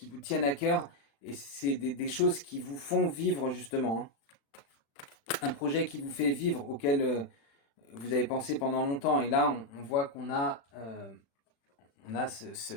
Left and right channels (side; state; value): right; late; 36 ms